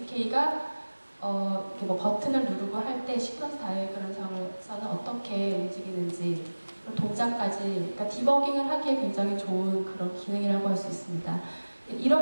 이렇게 뭐 버튼을 누르고 할 때 시퀀스 다이어그램상에서는 어떻게 움직이는지 동작까지 그러니까 디버깅을 하기에 굉장히 좋은 그런 기능이라고 할 수 있습니다.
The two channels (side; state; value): both; inverted; correlation -1.00